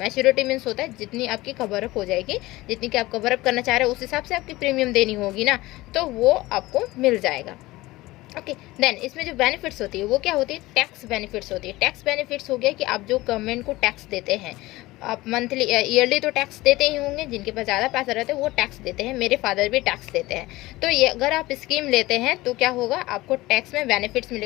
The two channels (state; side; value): quieter; right; 19.1 dB